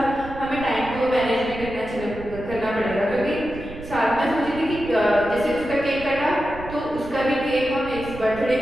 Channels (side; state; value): right; noise; rumble, 13 dB below the sound